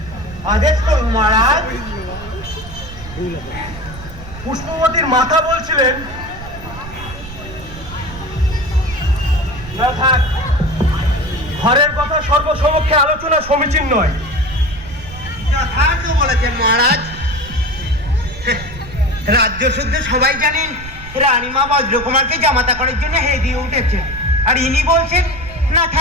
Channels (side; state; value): right; noise; rumble, 13 dB below the sound